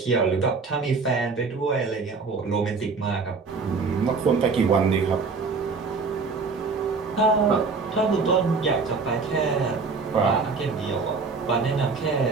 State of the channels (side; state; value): left; quieter; 4.5 dB